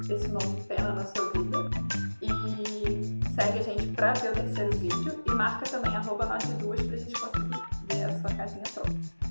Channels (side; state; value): both; inverted; correlation -1.00